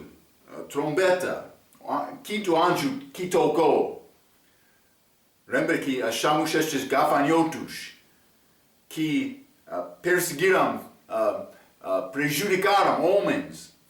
trombeta, quinto anjo que tocou. Lembra que achamos estes gafanhotos que perseguiram, prejudicaram homens,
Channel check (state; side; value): identical; both; correlation 1.00